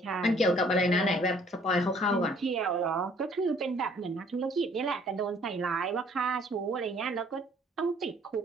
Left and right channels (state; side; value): normal; both; correlation 0.59